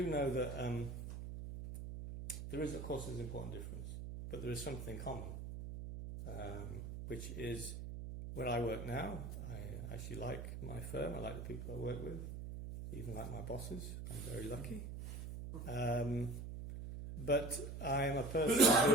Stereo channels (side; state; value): right; noise; hum, 7 dB below the sound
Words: know that there is, of course, an important difference, but there is something common, which is where I work now. I actually like my firm. I like the people I work with, even like my bosses. I'm very lucky. But I am a